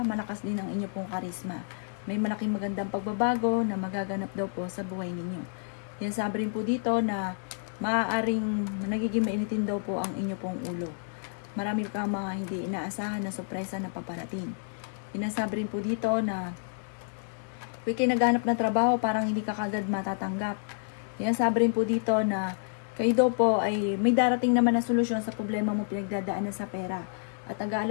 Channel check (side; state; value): right; silent; digital silence